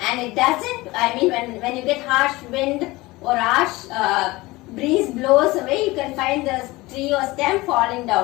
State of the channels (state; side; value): quieter; right; 20.8 dB